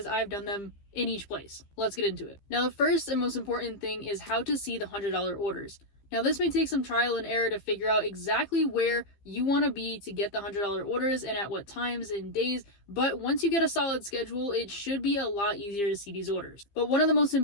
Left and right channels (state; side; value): late; right; 15 ms